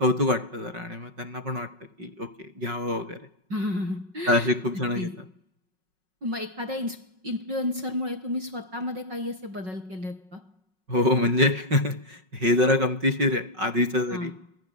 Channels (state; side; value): late; left; 5.4 ms